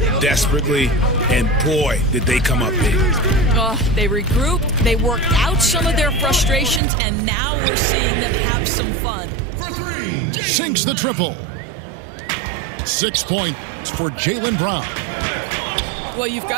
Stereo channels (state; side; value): drops out; left; at 6.8 s